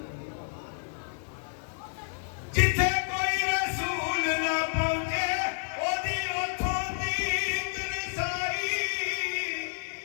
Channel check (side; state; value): right; silent; 58 dB below the other